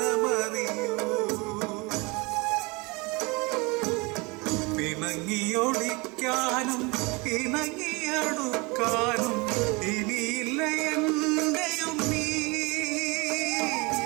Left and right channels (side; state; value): left; quieter; 26.9 dB